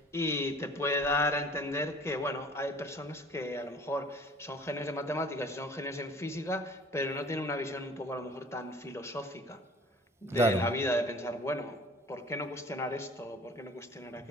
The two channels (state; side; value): normal; both; correlation 0.49